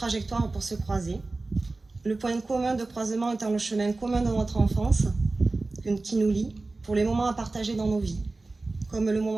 pour se croiser. Le point commun de croisement étant le chemin commun de notre enfance, qui nous lie pour les moments à partager dans nos vies, comme le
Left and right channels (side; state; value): left; quieter; 3.3 dB